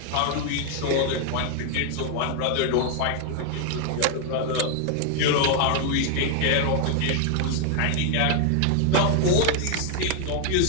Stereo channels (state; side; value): different; both; correlation 0.00